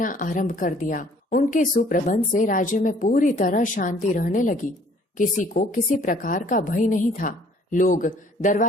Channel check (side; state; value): both; normal; correlation 0.57